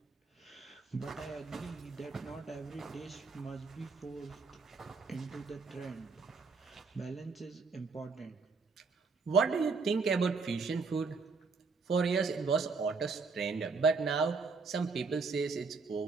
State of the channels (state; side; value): quieter; left; 4.5 dB